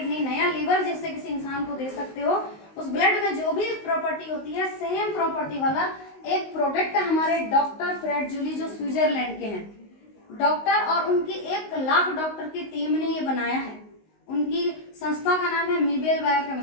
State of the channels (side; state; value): right; late; 19 ms